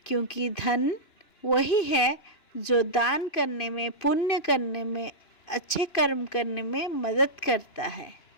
क्योंकि धन वही है जो दान करने में, पुण्य करने में, अच्छे कर्म करने में मदद करता है।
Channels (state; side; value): late; right; 2.9 ms